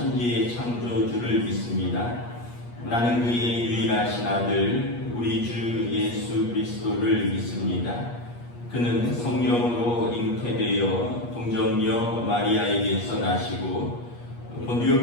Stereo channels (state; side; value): late; right; 8.4 ms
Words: 창조주를 믿습니다. 나는 그의 유일하신 아들 우리 주 예수 그리스도를 믿습니다. 그는 성령으로 잉태되어 동정녀 마리아에게서 나시고